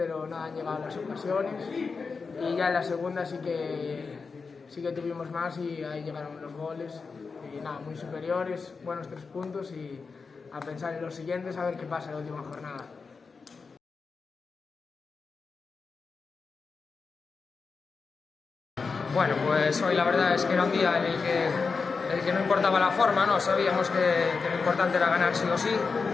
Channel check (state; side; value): quieter; right; 4.8 dB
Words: no han llegado las ocasiones. Y ya en la segunda sí que tuvimos más y ahí llegaron los goles. Y nada, muy superiores, buenos 3 puntos y a pensar en los siguientes, a ver qué pasa en la última jornada. Bueno, pues hoy la verdad es que era un día en el que no importaba la forma, ¿no? Sabíamos que lo importante era ganar sí o sí